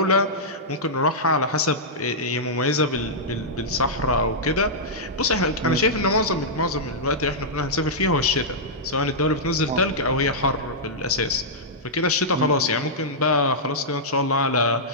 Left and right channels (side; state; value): both; normal; correlation -0.11